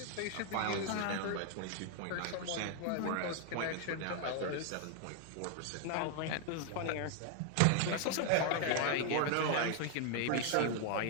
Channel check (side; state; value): both; different; correlation 0.00